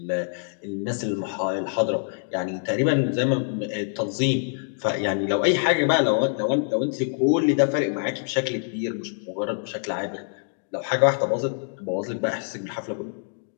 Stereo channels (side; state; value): right; silent; digital silence